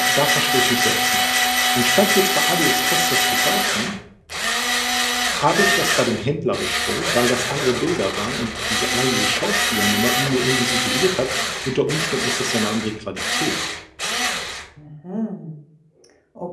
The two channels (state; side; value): identical; both; correlation 1.00